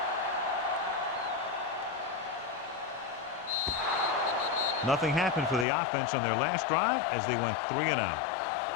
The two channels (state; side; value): drops out; right; at 5.7 s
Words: Nothing happened for the offense on their last drive as they went 3 and out.